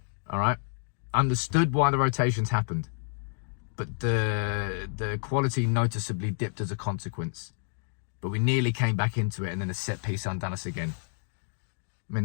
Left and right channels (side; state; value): right; silent; 58 dB below the other